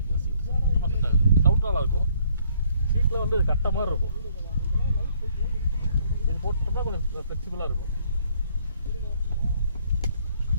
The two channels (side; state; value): both; inverted; correlation -0.65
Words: சீட் செட் ஆகுது. சவுண்ட் நல்லா இருக்கும். சீட்டில் வந்து கட்ட மாதிரி இருக்கும். இது போட்டுட்டோம்னா கொஞ்சம் ஃப்ளெக்சிபிளாக இருக்கும்.